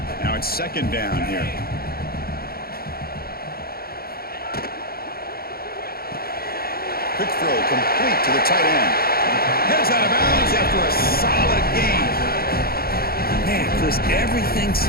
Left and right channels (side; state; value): right; late; 0.44 ms